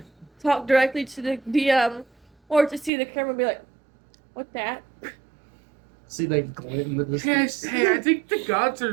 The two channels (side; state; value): left; drops out; at 2.9 s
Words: talk directly to the DM, or to see the camera and be like, What that? See that glint in the Yes, distance? hey, I think the gods